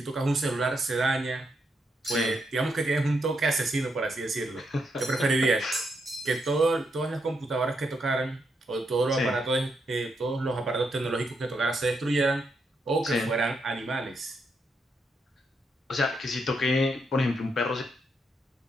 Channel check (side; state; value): both; normal; correlation 0.80